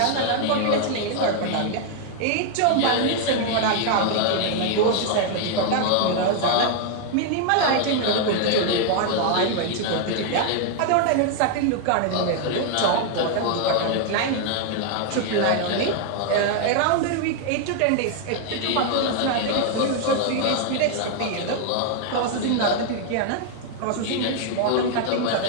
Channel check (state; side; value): different; both; correlation 0.00